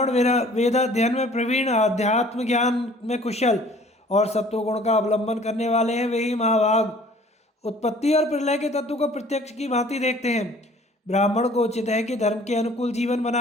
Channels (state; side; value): normal; both; correlation 0.52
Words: वेदाध्ययन में प्रवीण, अध्यात्म ज्ञान में कुशल और सत्वगुण का अवलंबन करने वाले हैं, वे ही महाभाग उत्पत्ति और प्रलय के तत्व को प्रत्यक्ष की भांति देखते हैं। ब्राह्मण को उचित है कि धर्म के अनुकूल जीवन